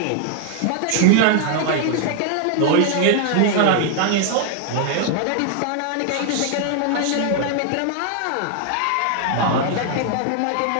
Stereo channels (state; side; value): different; both; correlation 0.00